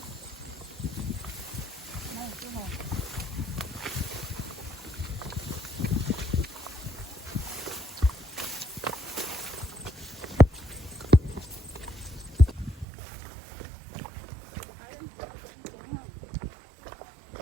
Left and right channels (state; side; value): drops out; left; at 12.9 s